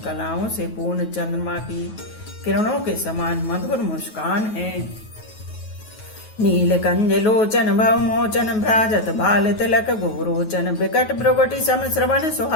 कलाओं से पूर्ण चंद्रमा की किरणों के समान मधुर मुस्कान है। नीलकंज लोचन भवमोचन भ्राजत बाल तिलक गोरोचन विकट भ्रुगुटि सम श्रवण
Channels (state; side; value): late; right; 9.3 ms